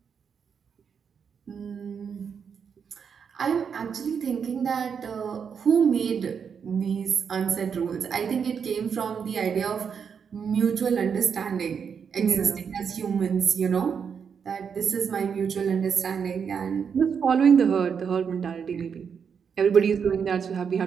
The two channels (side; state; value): left; quieter; 6.8 dB